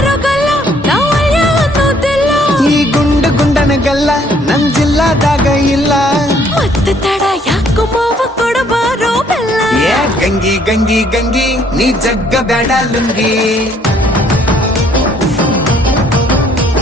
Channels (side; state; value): both; normal; correlation 0.64